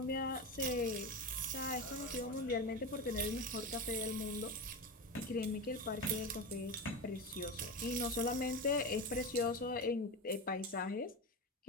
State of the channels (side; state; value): both; normal; correlation 0.21